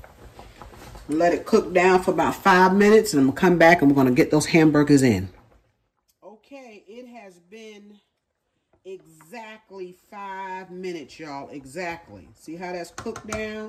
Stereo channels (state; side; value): identical; both; correlation 1.00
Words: Let it cook down for about 5 minutes, and I'm going to come back and we're going to get those hamburgers in. Okay, it has been exactly 5 minutes, y'all. Exactly. See how that's cooked